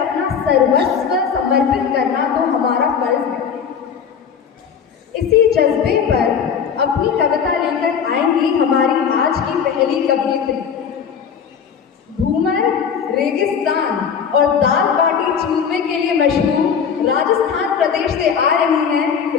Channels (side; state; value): right; quieter; 7.1 dB